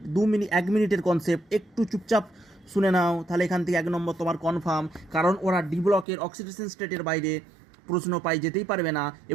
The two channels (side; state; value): left; drops out; at 6.1 s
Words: 1 মিনিটের কনসেপ্ট, একটু চুপচাপ শুনে নাও, তাহলে এখান থেকে 1 নম্বর তোমার কনফার্ম, কারণ ওরা ডি ব্লকের অক্সিডেশন স্টেটের বাইরে প্রশ্ন পাই যেতেই পারবে না,